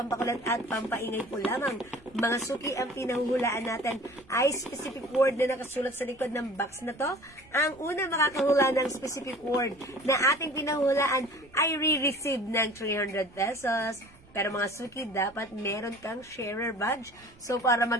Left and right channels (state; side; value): noise; right; rumble, 26 dB below the sound